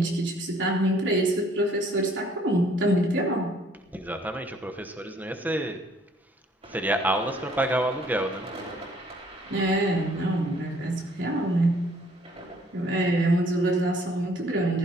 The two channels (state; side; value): normal; both; correlation 0.61